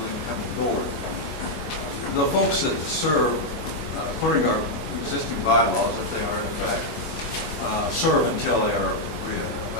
incoming board. The folks that serve, according to our existing bylaws, if they are in effect, serve until they are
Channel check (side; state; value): right; late; 25 ms